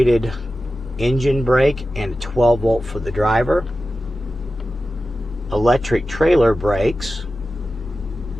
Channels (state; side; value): normal; both; correlation 0.94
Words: engine brake and a 12 volt for the driver. Electric trailer brakes.